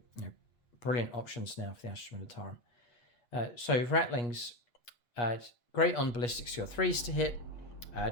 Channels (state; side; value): late; right; 8.4 ms